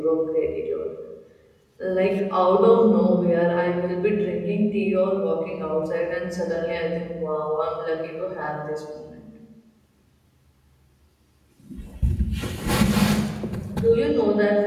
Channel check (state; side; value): identical; both; correlation 1.00